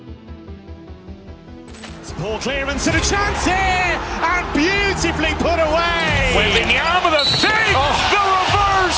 Poor clearance and a chance here, and beautifully put away. Waving the arm of the fake, the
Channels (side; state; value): both; identical; correlation 1.00